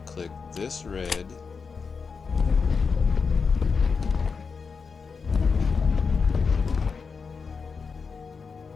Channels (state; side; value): quieter; right; 5.3 dB